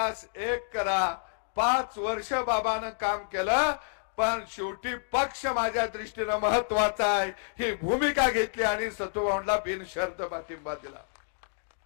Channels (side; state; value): right; silent; digital silence